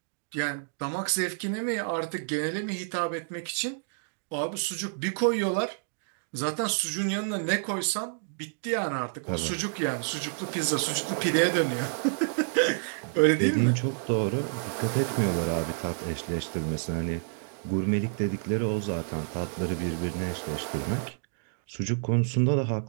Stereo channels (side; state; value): left; silent; digital silence